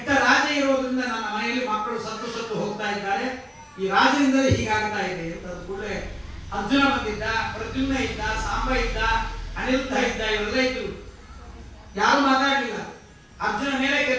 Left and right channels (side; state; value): both; identical; correlation 1.00